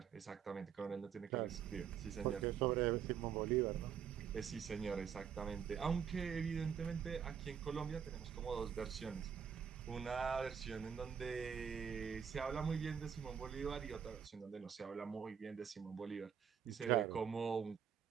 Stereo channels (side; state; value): left; quieter; 7.8 dB